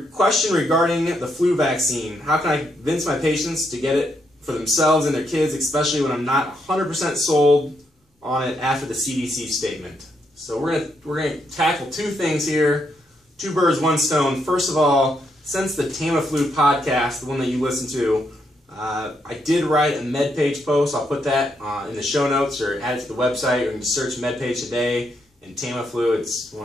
question regarding the flu vaccine. How can I convince my patients to get it for themselves and their kids, especially when I'm not 100% sold on it after the CDC statement? So we're gonna tackle two things here. Two birds, one stone. First of all, since the Tamiflu podcast, the one that you listen to, I did write a MedPage post. I'll put that in the show notes or add it to the website, or you can just search MedPage today and Tamiflu. It's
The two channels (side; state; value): both; normal; correlation 0.78